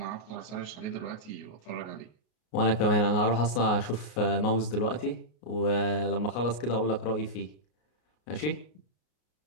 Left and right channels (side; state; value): right; late; 33 ms